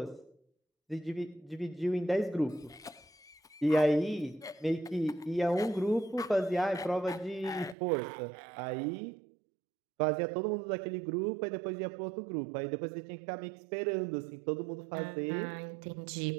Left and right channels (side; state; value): left; drops out; at 7.8 s